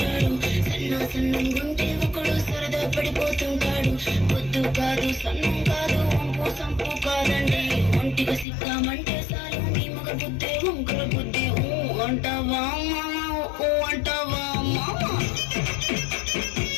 సన్నంగుంటే ఒకడు సరదా పడిపోతుంటాడు. పొద్దు కాదు సన్నం కాదు వంపు సంపు కాదండి, ఒంటిగా సిక్కామంటే చాలు మీ మగ బుద్ధి వంకర బుద్ధి. అంటావా మామా అంటావా మామా,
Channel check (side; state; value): right; drops out; at 8.5 s